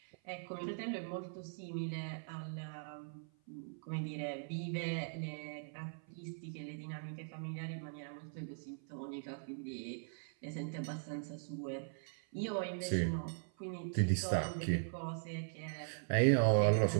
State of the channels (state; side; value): silent; left; 51 dB below the other